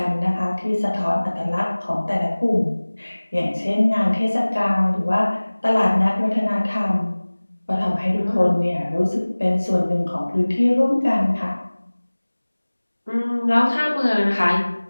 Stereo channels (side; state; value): both; inverted; correlation -1.00